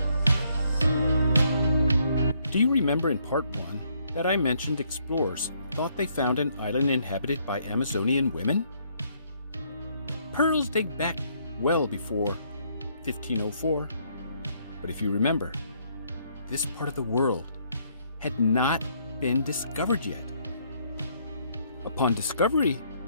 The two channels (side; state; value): both; inverted; correlation -0.70